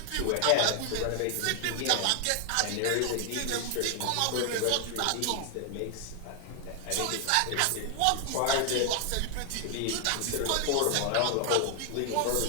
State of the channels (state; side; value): different; both; correlation 0.00